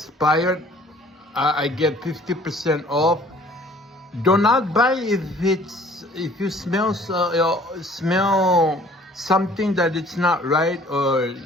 I get 50% off. Do not buy if you smell something that it's not right, or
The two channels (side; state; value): both; normal; correlation 0.54